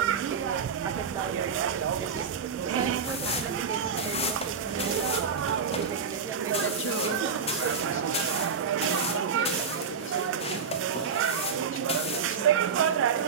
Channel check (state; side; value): quieter; left; 5.9 dB